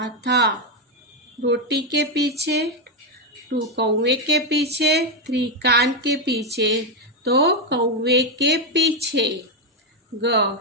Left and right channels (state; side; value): normal; both; correlation 0.05